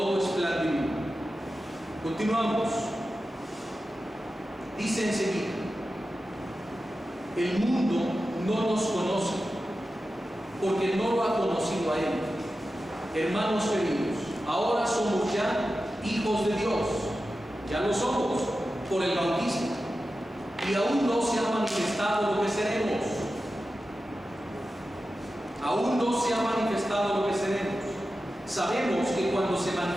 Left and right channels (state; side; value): normal; both; correlation 0.93